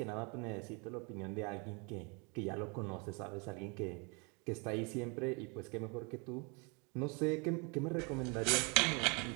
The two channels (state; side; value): quieter; left; 32.3 dB